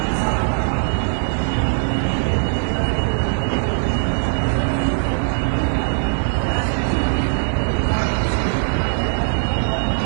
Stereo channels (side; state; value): left; silent; digital silence